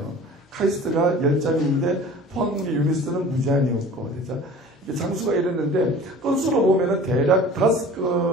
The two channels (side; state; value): both; normal; correlation 0.43